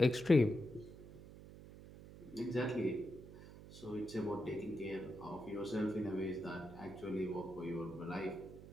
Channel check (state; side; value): noise; right; hum, 16 dB below the sound